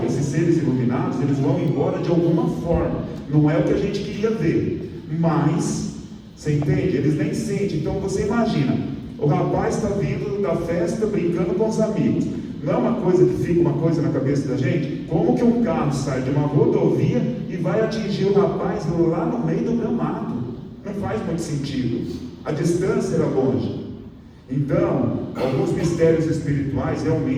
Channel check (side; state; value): both; identical; correlation 1.00